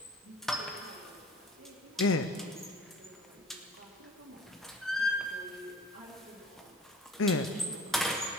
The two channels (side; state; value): both; normal; correlation 0.43